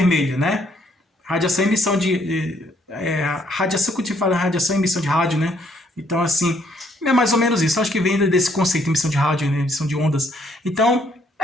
né? Radiação e emissão radiação, quando a gente fala radiação e emissão de rádio, né? Então, assim, é mais ou menos isso. Acho que vem desse conceito, emissão de rádio, né? Emissão de ondas. Então,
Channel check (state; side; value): normal; both; correlation 0.68